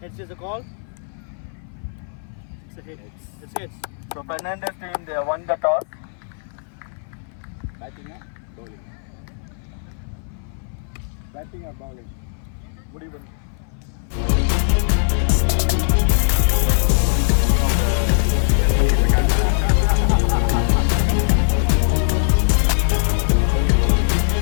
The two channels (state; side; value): silent; right; 61 dB below the other